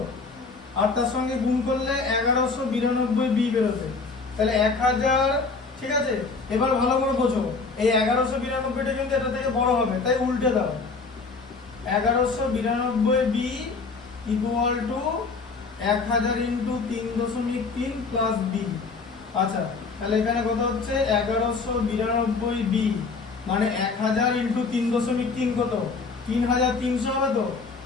আর তার সঙ্গে গুণ করলে 1192 বি বেরোবে, তাহলে 1000, ঠিক আছে। এবার ভালো করে বোঝো, এই 1192টা কিন্তু এটা থেকে বড় হবে, তাই উল্টে দাও, 1192 B equal to 1000 into 3.3 plus B. আচ্ছা, তাহলে এখানে কত হচ্ছে 1192 বি মানে 1000 ইন্টু 3.3 কত, 3300 হবে তো,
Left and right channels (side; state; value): right; quieter; 4.3 dB